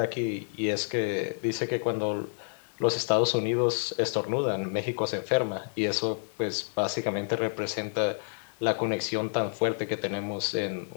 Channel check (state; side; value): silent; right; digital silence